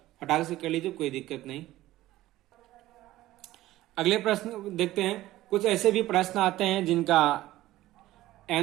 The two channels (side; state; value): left; quieter; 15.8 dB